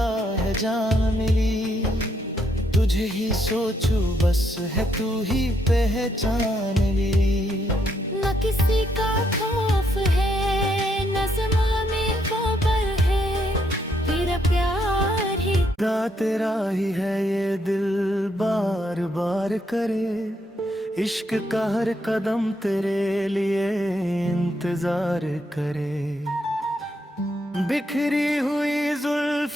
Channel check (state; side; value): normal; both; correlation 0.75